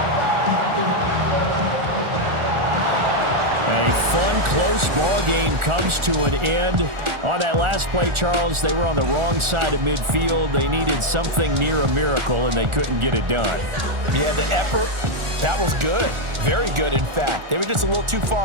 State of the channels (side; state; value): left; late; 1.4 ms